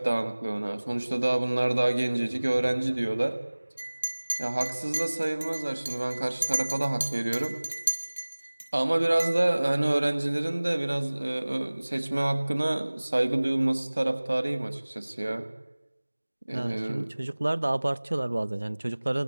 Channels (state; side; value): inverted; both; correlation -1.00